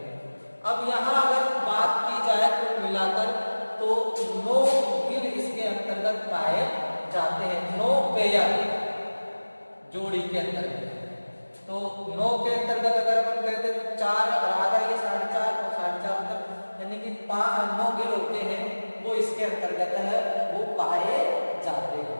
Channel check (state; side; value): inverted; both; correlation -1.00